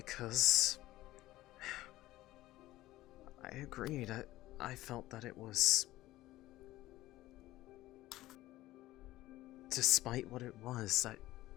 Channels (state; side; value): quieter; right; 16.5 dB